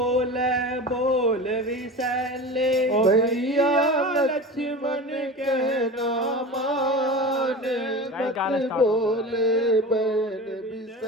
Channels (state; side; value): normal; both; correlation 0.31